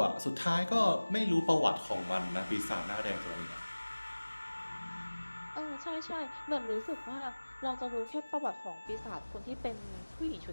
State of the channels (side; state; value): both; inverted; correlation -1.00